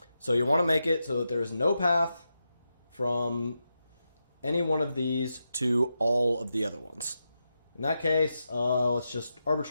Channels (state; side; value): inverted; both; correlation -0.88